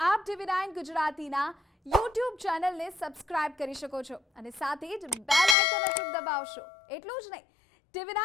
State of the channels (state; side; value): drops out; right; at 5.6 s